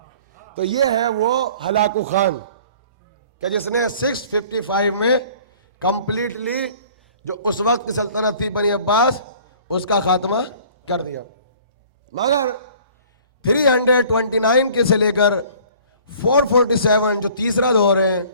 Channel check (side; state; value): both; inverted; correlation -0.51